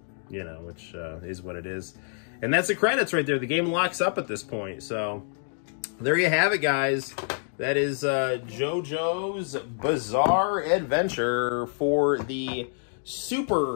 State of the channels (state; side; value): silent; right; 57 dB below the other